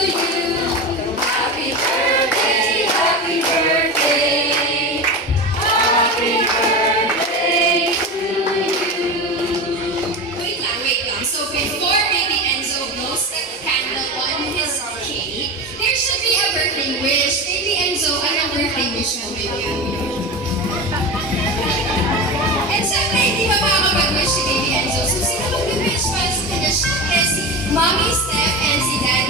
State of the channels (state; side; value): normal; both; correlation 0.25